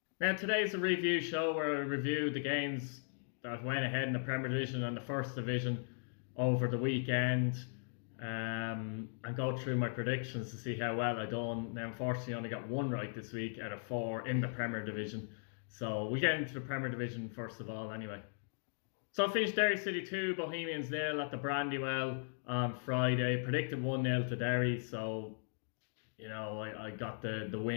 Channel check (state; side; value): silent; right; digital silence